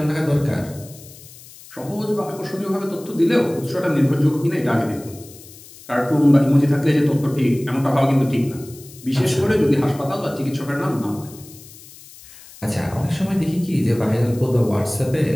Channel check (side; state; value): left; noise; hiss, 20 dB below the sound